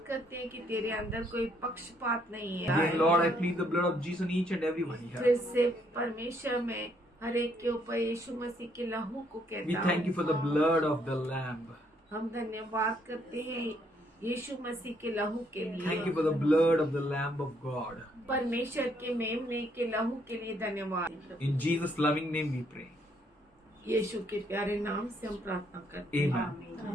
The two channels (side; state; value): both; normal; correlation 0.70